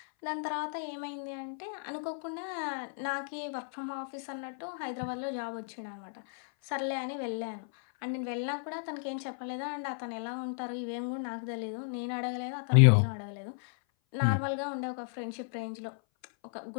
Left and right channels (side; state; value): right; silent; 55 dB below the other